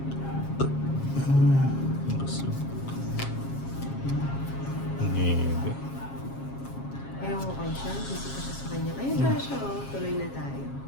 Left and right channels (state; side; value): late; right; 7.4 ms